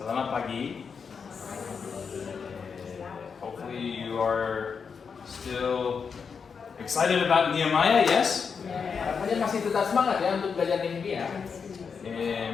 pagi. Hopefully you are still excited about Nehemiah, yes? Harapannya masih tetap semangat ya untuk belajar Nehemia.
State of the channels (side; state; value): right; quieter; 6.0 dB